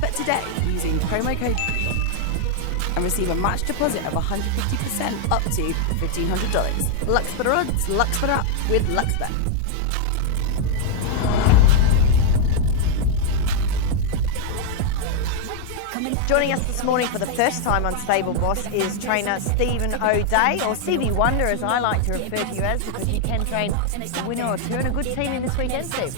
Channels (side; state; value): both; different; correlation 0.00